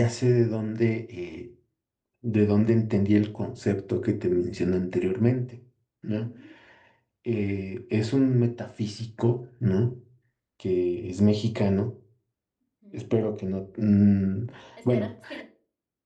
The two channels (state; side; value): identical; both; correlation 1.00